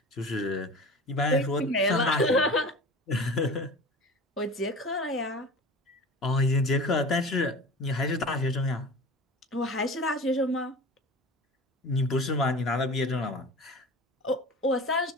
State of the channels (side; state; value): both; normal; correlation 0.36